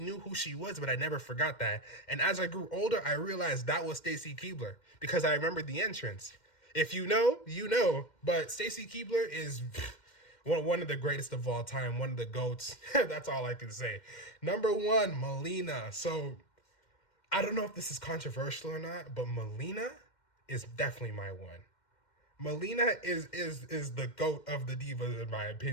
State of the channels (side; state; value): right; late; 2.1 ms